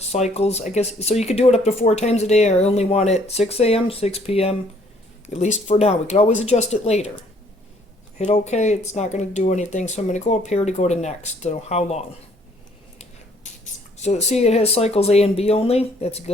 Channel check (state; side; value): normal; both; correlation 0.62